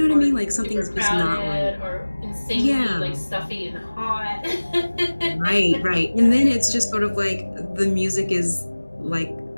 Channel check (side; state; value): both; inverted; correlation -1.00